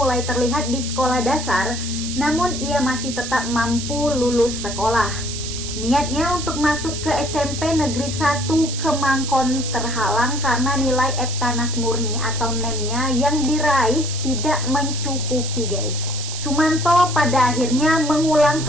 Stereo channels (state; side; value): noise; right; hiss, 7 dB below the sound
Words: terlihat di sekolah dasar, namun ia masih tetap mampu lulus sekolah. Niatnya untuk masuk ke SMP Negeri 1 Kemangkon terhalang karena nilai Eptanas Murni atau NEM-nya yang diraih tidak mencukupi guys. Sumanto pada akhirnya mengulang